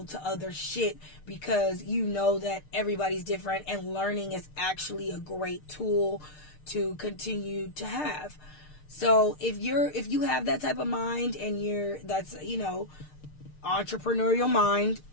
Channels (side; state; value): right; late; 6.6 ms